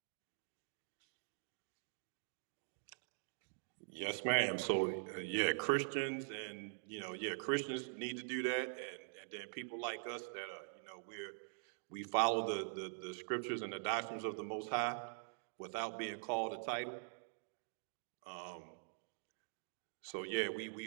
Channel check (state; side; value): silent; left; digital silence